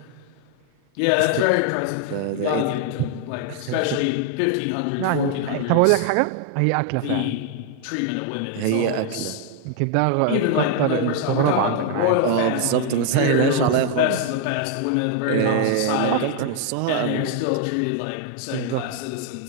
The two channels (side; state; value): both; different; correlation 0.00